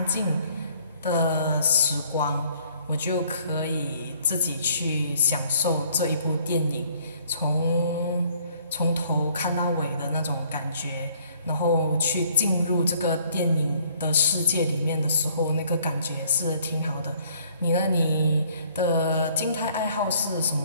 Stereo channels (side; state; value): both; inverted; correlation -0.61